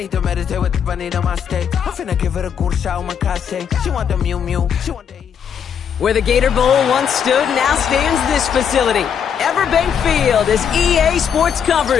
to meditate with the bunny on my stay. I'm finna give her a good shot with my case. She want the Mew Mew. She want the... Where the Gator Bowl once stood, now stands this facility. Everbank Field, as EA Sports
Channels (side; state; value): right; quieter; 7.8 dB